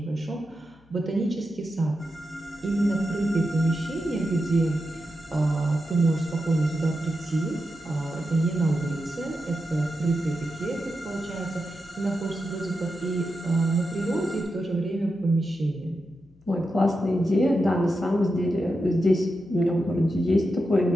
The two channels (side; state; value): left; noise; hum, 29 dB below the sound